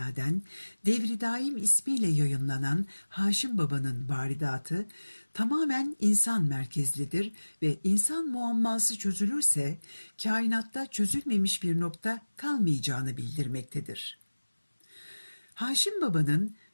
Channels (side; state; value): both; inverted; correlation -1.00